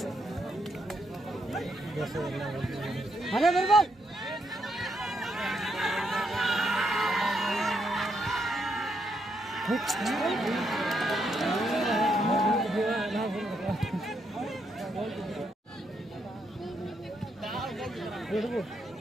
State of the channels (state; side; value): normal; both; correlation 0.78